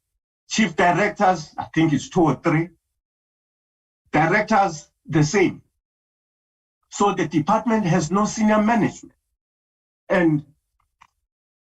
Chief directors, I think it's 2 or 3. Directors, the same. So the department has no senior management. And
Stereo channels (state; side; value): identical; both; correlation 1.00